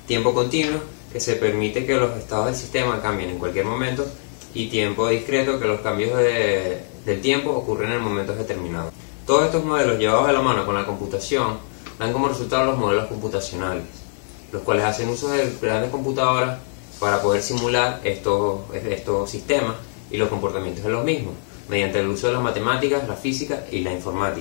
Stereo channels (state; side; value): silent; right; digital silence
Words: tiempo continuo, que se permite que los estados del sistema cambien en cualquier momento, y tiempo discreto, que los cambios del tiempo ocurren en momentos determinados. Todos estos modelos, llevados de la mano con la computación, dan como resultado los modelos computacionales, los cuales hacen uso de grandes computadoras para poder simular estos sistemas y los comportamientos de los mismos, mediante el uso de las matemáticas, la física y la